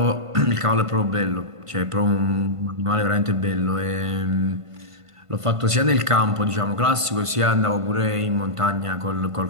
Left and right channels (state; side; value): late; left; 1.5 ms